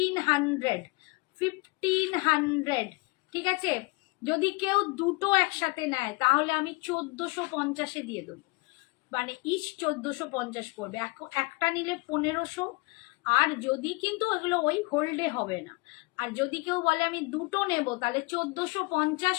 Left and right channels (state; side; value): quieter; right; 26.4 dB